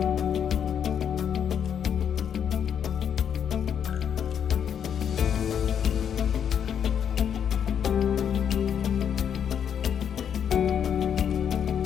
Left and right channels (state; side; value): quieter; right; 8.3 dB